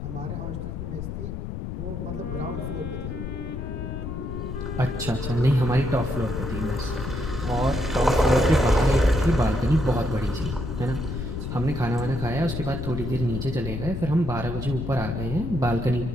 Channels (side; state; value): left; noise; rumble, 5 dB below the sound